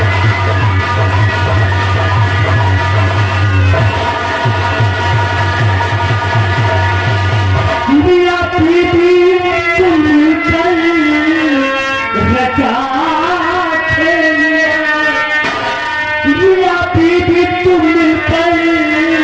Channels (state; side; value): identical; both; correlation 1.00